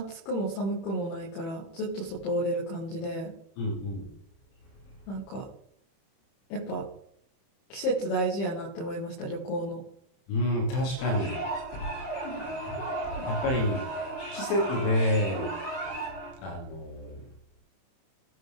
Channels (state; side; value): late; right; 31 ms